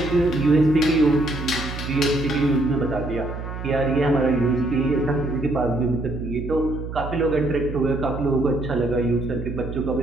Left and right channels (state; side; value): noise; right; hum, 8 dB below the sound